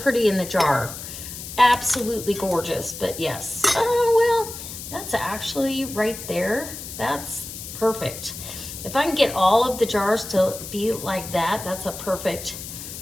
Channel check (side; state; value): left; noise; hiss, 10 dB below the sound